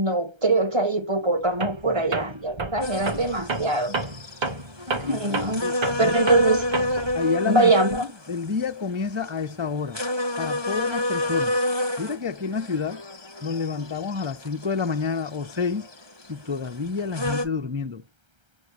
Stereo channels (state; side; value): late; left; 1.3 ms